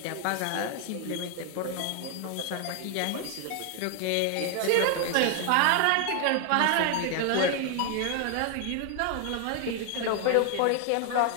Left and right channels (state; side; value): different; both; correlation 0.01